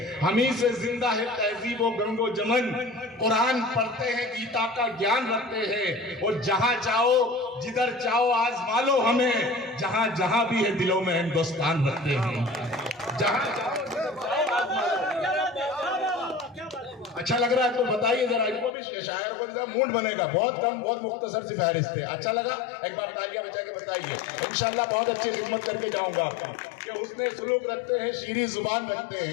ہمیں سے زندہ ہے تہذیب و گنگ و جمن، قرآن پڑھتے ہیں، گیتا کا گیان رکھتے ہیں، اور جہاں چاہو جدھر چاہو آزما لو ہمیں، جہاں جہاں بھی ہے دلوں میں ہندوستان رکھتے ہیں۔ جہاں چاہو جدھر چاہو آزما لو۔ اچھا لگ رہا ہے تو بتائیے ذرا، ان کو بھی شاعر کو ذرا موڈ بنے گا۔ بہت کم، بہت مختصر سی فہرست ہے۔ اچھا لگا؟ ایک بار تالیاں بجا کے بتائیے۔ انشاءاللہ بہت اچھی خدمت کر کے جاؤں گا کہ حسن سلوک رکھتے ہیں، شیریں زبان رکھتے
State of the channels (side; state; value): right; drops out; at 18.8 s